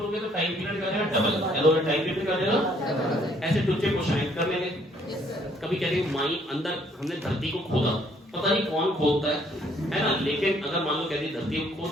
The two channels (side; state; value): both; normal; correlation 0.64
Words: गया तो टाइम पीरियड क्या हो जाएगा? डबल। हेलो, टाइम पीरियड क्या हो जाएगा? ऐसे टुच्चे को शाइन कर लेंगे। कभी कहते हैं माई अंदर हमने धरती को खोदा, पता नहीं कौन खोदता है ना, लेकिन अगर मान लो कहते धरती को खोद